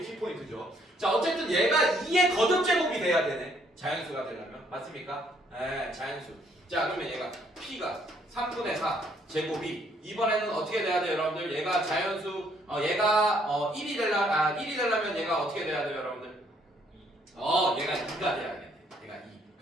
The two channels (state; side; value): normal; both; correlation 0.67